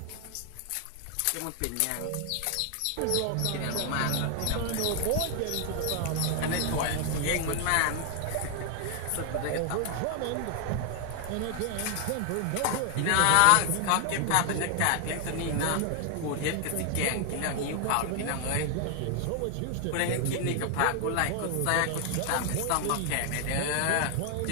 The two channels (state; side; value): different; both; correlation 0.00